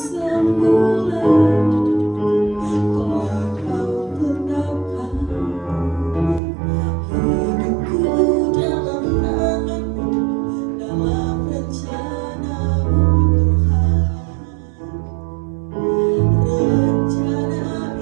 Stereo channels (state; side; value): drops out; left; at 6.4 s